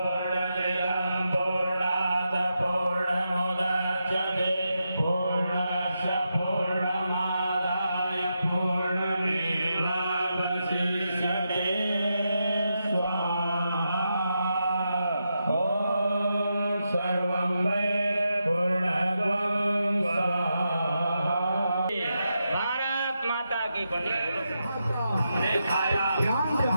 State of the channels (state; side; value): inverted; both; correlation -0.86